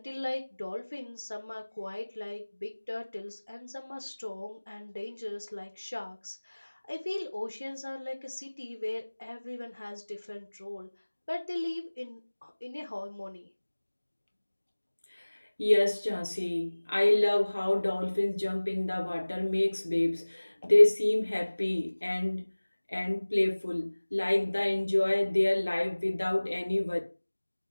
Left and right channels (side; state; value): both; inverted; correlation -1.00